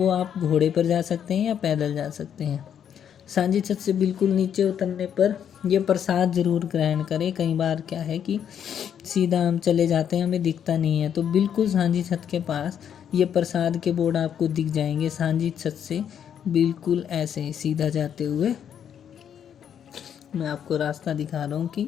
आप घोड़े पर जा सकते हैं या पैदल जा सकते हैं। सांझी छत से बिल्कुल नीचे उतरने पर ये प्रसाद ज़रूर ग्रहण करें। कई बार क्या है कि सीधा हम चले जाते हैं, हमें दिखता नहीं है, तो बिल्कुल सांझी छत के पास ये प्रसाद के बोर्ड आपको दिख जाएंगे। सांझी छत से बिल्कुल ऐसे सीधा जाते हुए मैं आपको रास्ता दिखा रहा हूँ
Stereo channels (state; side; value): quieter; right; 8.8 dB